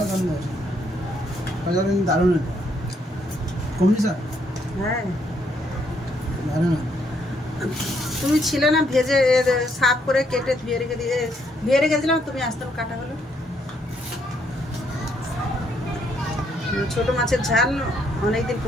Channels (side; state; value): both; normal; correlation 0.72